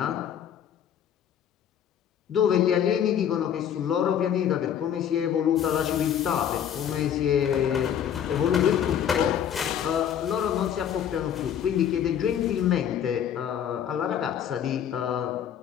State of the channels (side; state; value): right; quieter; 9.2 dB